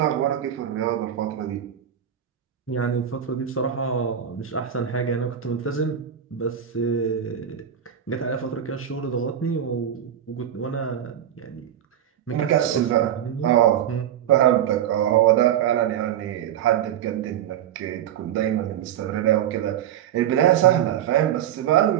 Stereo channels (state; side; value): quieter; left; 10.0 dB